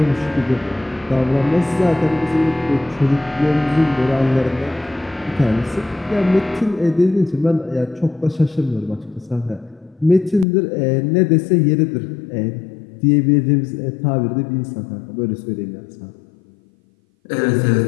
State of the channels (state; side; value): drops out; right; at 10.5 s